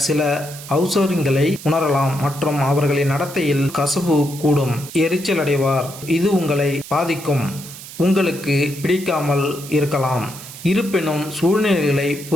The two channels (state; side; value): noise; right; hiss, 14 dB below the sound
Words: சில அவசரங்களை உணரலாம் மற்றும் அவர்களின் நடத்தையில் கசப்பு கூடும். எரிச்சல் அடைவார். இது உங்களை பாதிக்கும். உங்களுக்கு பிடிக்காமல் இருக்கலாம். இருப்பினும் சூழ்நிலைகளை